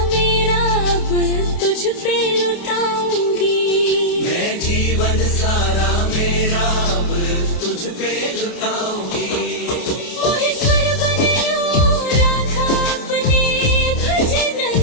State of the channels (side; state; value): right; late; 29 ms